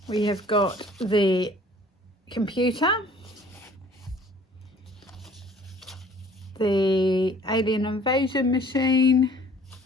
we have got the computer, the alien invasion machine,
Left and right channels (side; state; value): both; normal; correlation 0.53